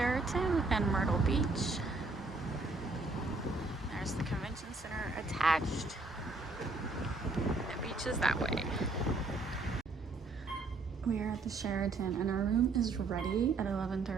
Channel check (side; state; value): left; quieter; 3.5 dB